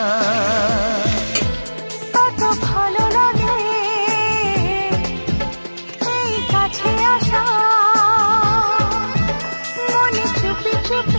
কত ভালো লাগে এই কাছে আসা, মনে চুপি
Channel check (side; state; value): both; inverted; correlation -1.00